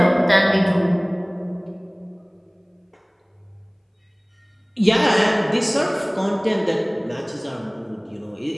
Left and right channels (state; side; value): identical; both; correlation 1.00